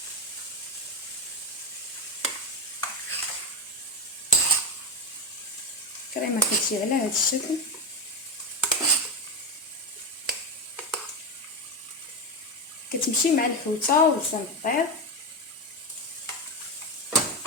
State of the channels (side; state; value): both; normal; correlation 0.13